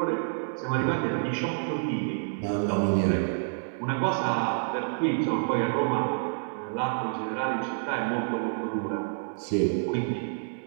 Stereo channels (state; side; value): silent; left; digital silence